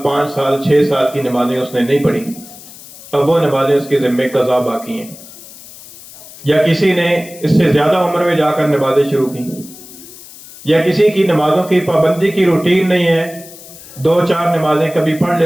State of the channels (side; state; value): left; noise; hiss, 18 dB below the sound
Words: 5 سال 6 سال کی نمازیں اس نے نہیں پڑھی، اب وہ نمازیں اس کے ذمے قضا باقی ہیں۔ یا کسی نے اس سے زیادہ عمر میں جا کر نمازیں شروع کی، یا کسی کی نمازوں کی پابندی کی روٹین نہیں ہے، 2-4 نمازیں کبھی پڑھ